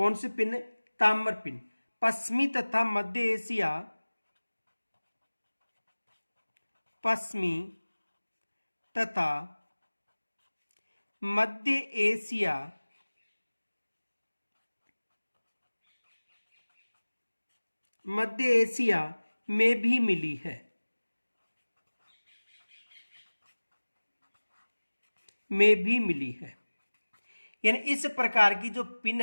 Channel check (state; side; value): inverted; both; correlation -1.00